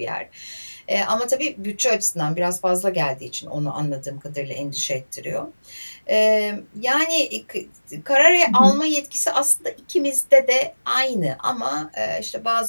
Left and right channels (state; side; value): inverted; both; correlation -1.00